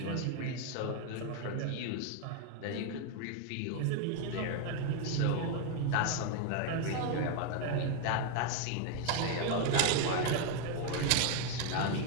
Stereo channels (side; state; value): both; different; correlation 0.01